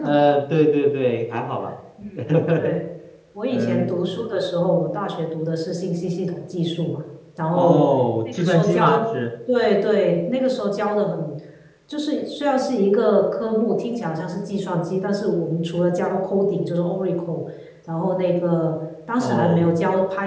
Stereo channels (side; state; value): both; identical; correlation 1.00